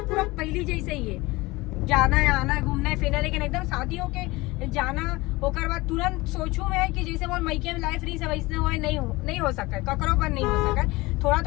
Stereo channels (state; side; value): quieter; right; 21.7 dB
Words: पूरा पहली जैसे ही है, जाना है आना घूमना फिरना। लेकिन एकदम शादियों के जाना ओकर बाद तुरंत सोचू मैं कि जैसे वो मैके में लाइफ रही वैसे वो नहीं हो सका, ककरों पर नहीं हो सका। थोड़ा